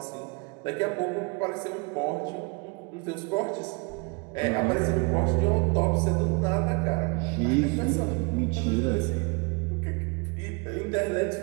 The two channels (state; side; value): quieter; left; 30.8 dB